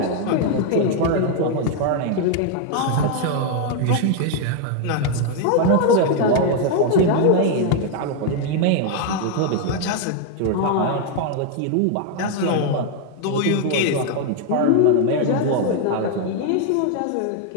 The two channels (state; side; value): different; both; correlation 0.00